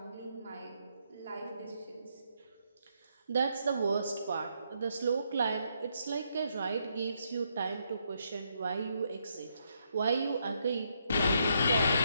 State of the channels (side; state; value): both; inverted; correlation -0.76